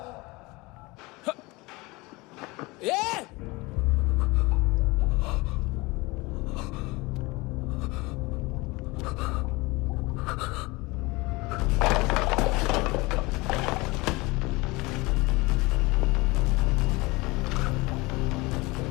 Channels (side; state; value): right; quieter; 23.6 dB